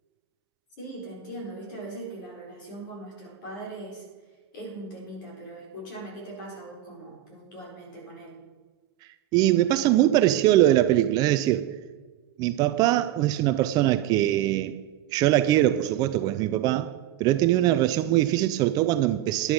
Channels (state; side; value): quieter; left; 13.1 dB